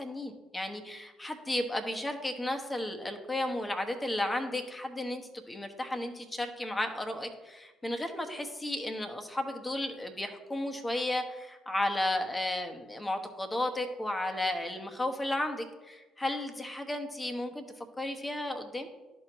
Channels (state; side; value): normal; both; correlation 0.89